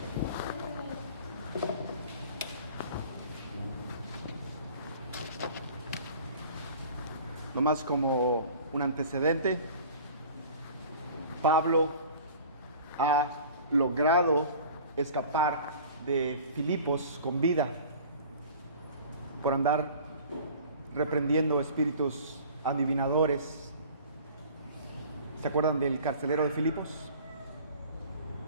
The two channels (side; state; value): both; inverted; correlation -0.44